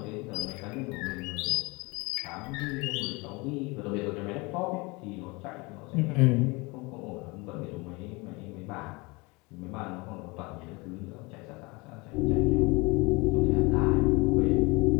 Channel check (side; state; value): right; quieter; 26.1 dB